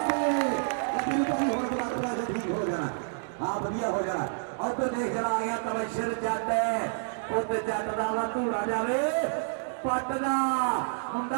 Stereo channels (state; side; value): silent; left; digital silence